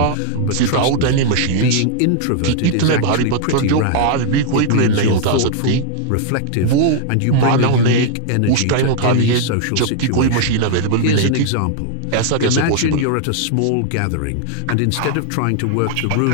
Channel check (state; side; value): different; both; correlation 0.00